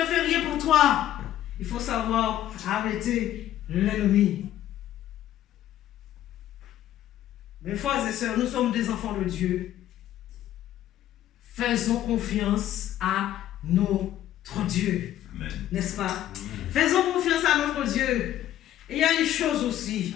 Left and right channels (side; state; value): right; quieter; 12.5 dB